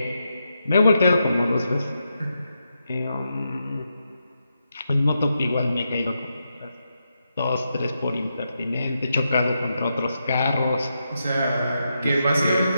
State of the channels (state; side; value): inverted; both; correlation -0.85